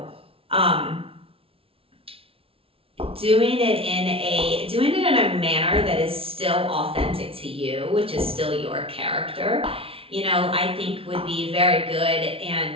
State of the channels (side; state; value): left; late; 0.26 ms